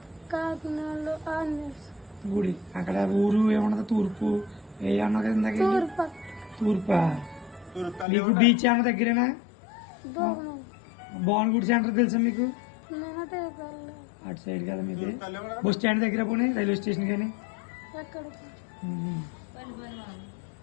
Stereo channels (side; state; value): right; drops out; at 8.1 s